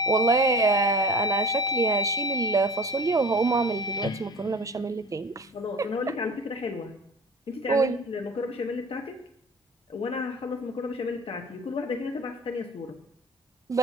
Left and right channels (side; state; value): both; normal; correlation 0.40